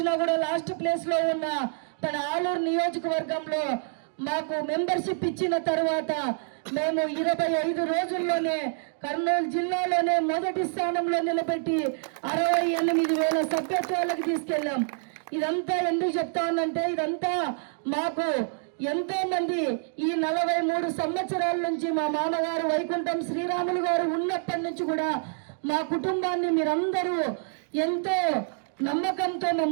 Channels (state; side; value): silent; left; digital silence